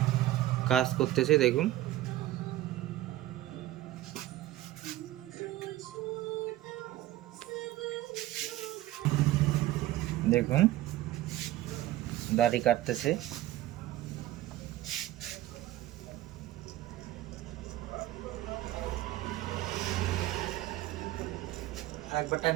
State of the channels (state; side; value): quieter; left; 15.0 dB